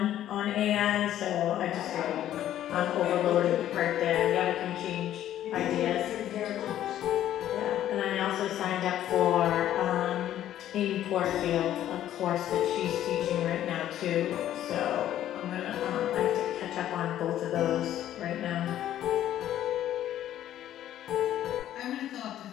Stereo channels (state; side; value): quieter; right; 12.0 dB